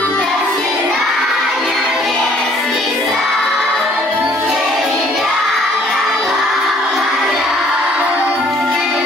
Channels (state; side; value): normal; both; correlation 0.60